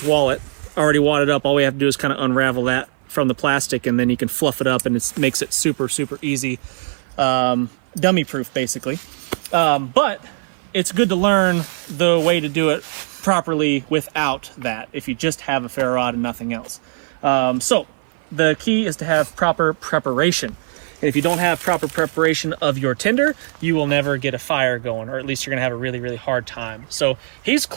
wallet, already wadded up. All we have to do is kind of unravel that from the plastic, and then you can fluff it up, and it makes it super easy, dummy proof basically. But it's good to learn the way to do it properly without that, if you just have a ferro rod and nothing else. So the key is to have proper preparation, and if you don't have proper preparation of your tinder, you will never get a fire going, or at least you're gonna have a really hard time. So he's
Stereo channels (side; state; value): left; silent; 56 dB below the other